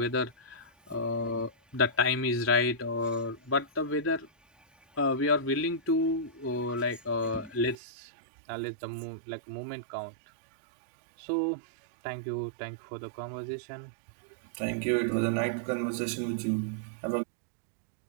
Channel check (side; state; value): left; drops out; at 7.8 s